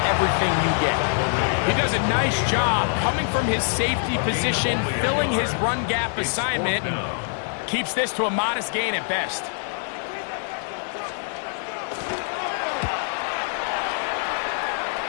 everything you get. He does a nice job coming from his safety position, filling his run gap assignment, and keeps this to a modest gain at best.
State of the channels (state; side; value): silent; right; 60 dB below the other